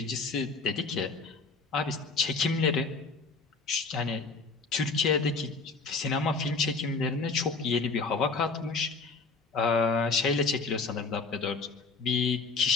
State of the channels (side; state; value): right; quieter; 4.2 dB